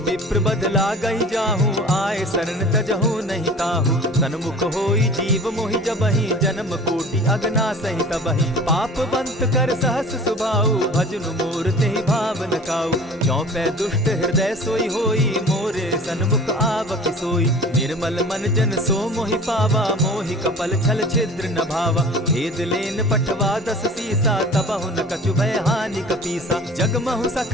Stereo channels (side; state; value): both; normal; correlation 0.43